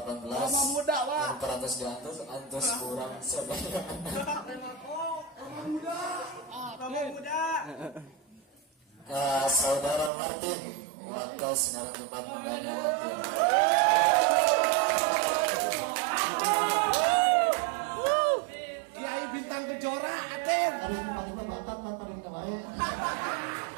Muda, Pak. Yang teratas di antus kurang saudara. Muda. Saudara Martin, waktu sinar tempat mendanya. Kiai Bintang Kejora, Aten. Hari ini paling bakat tanpa kita baik.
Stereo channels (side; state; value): left; drops out; at 10.1 s